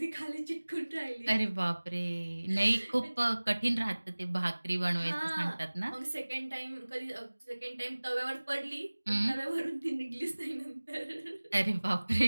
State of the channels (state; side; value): inverted; both; correlation -1.00